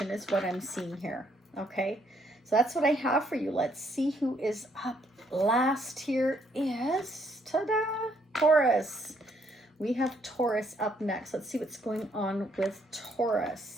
is what I'm seeing here. Okay, so that's what I have for you. Let's see who is up last. Here is, ta-da, Taurus. We have Taurus up next. Let's see what's going on with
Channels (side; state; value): both; normal; correlation 0.70